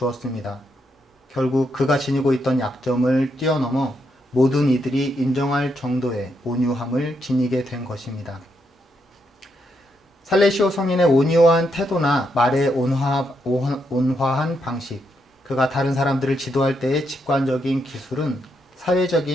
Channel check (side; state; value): both; normal; correlation 0.79